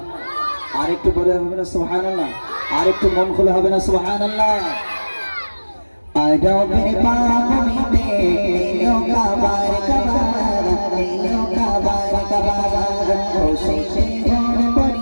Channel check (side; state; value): both; inverted; correlation -1.00